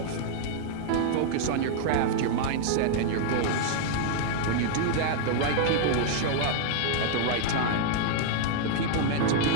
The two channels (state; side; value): different; both; correlation -0.01